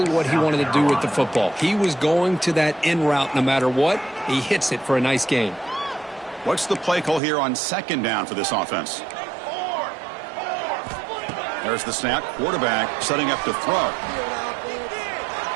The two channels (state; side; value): drops out; left; at 7.2 s